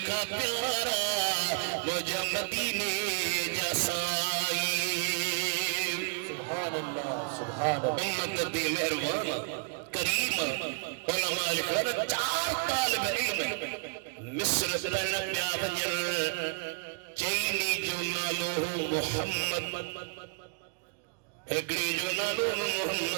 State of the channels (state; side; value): quieter; left; 33.0 dB